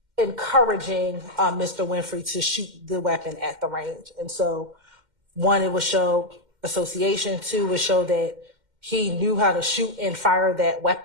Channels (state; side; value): late; left; 2.1 ms